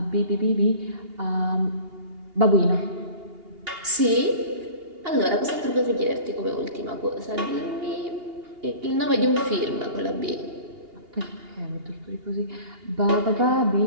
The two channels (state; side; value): late; left; 2.8 ms